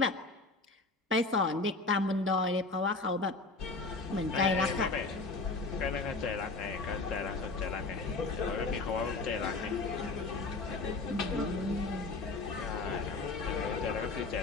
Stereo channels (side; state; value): right; quieter; 3.5 dB